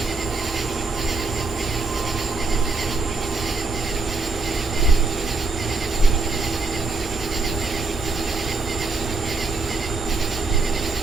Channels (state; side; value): quieter; left; 3.7 dB